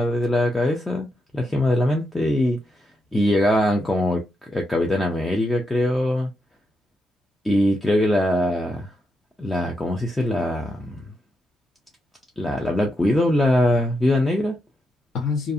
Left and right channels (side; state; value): both; normal; correlation 0.83